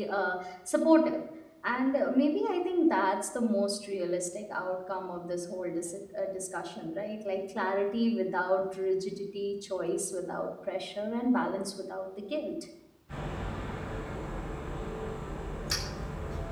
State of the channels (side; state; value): both; identical; correlation 1.00